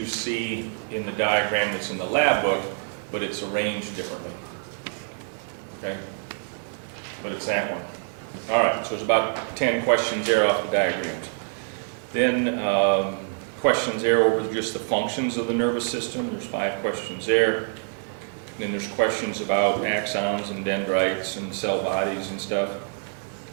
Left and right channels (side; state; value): left; silent; 57 dB below the other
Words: see in the diagram that's in the lab book, but it's arranged differently. Okay? But it's that one. All right, so there's about 10 questions there off the diagrams. Then questions there over just the functions of the nervous system. There's 5 questions there. Then there's questions about axons and dendrites and cell bodies and stuff.